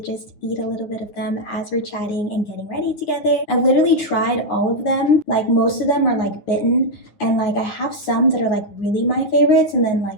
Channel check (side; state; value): right; late; 9.8 ms